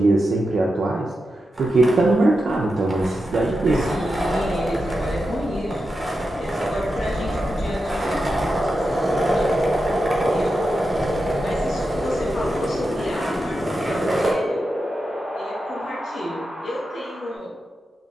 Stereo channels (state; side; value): normal; both; correlation 0.89